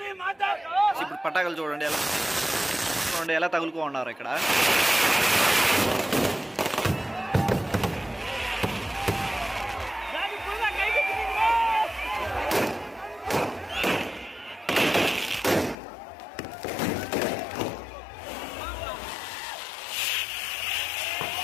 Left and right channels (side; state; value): right; drops out; at 15.8 s